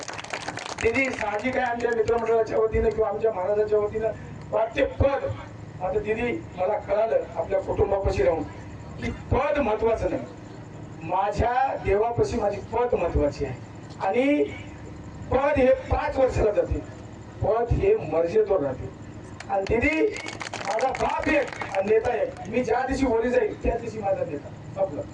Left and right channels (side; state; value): both; identical; correlation 1.00